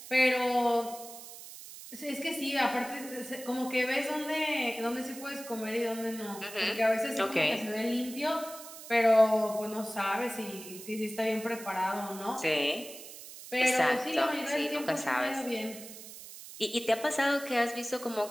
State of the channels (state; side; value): noise; right; hiss, 14 dB below the sound